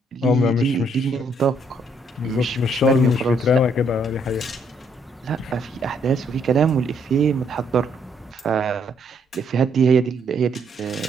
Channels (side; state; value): both; normal; correlation 0.70